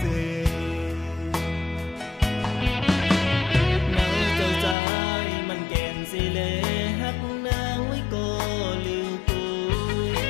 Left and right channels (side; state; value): right; drops out; at 4.8 s